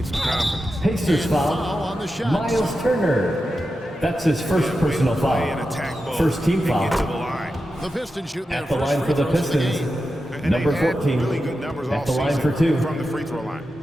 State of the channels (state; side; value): normal; both; correlation 0.90